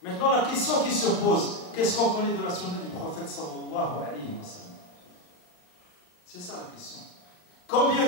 Maintenant, la question qui se pose, qu'est-ce qu'on connaît de la sunna du prophète sallallahu alayhi wa sallam? C'est ça la question. Combien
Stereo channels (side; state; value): right; late; 39 ms